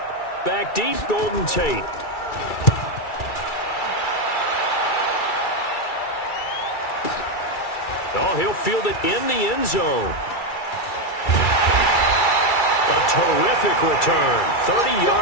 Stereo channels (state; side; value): late; right; 2.3 ms